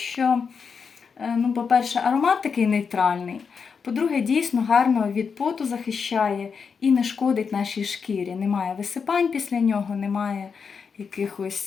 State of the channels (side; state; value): right; quieter; 5.9 dB